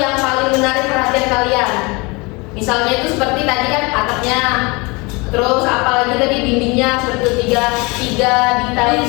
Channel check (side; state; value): right; quieter; 26.6 dB